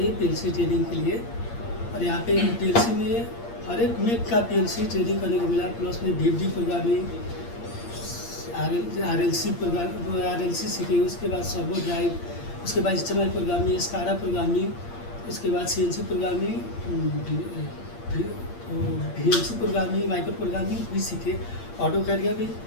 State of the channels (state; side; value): late; right; 8.6 ms